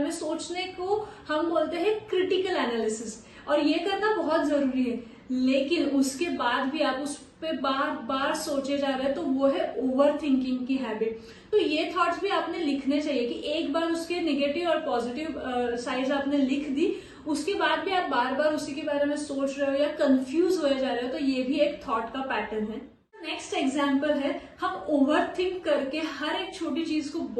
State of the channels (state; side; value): identical; both; correlation 1.00